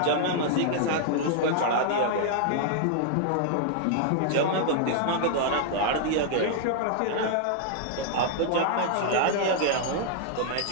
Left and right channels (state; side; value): different; both; correlation -0.01